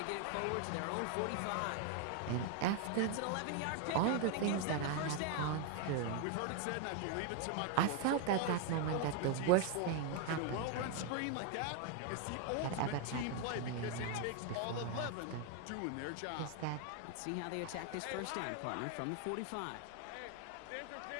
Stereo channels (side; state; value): both; different; correlation 0.00